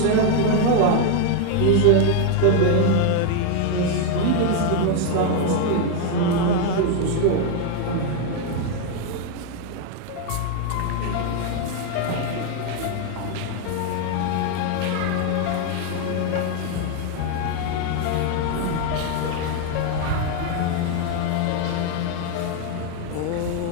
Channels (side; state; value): both; different; correlation 0.01